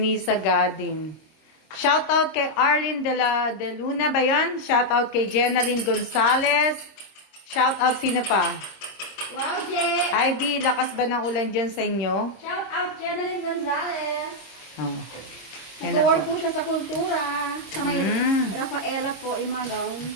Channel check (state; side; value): late; right; 26 ms